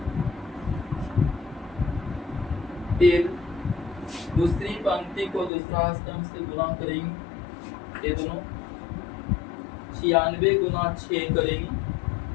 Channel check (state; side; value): drops out; right; at 5.5 s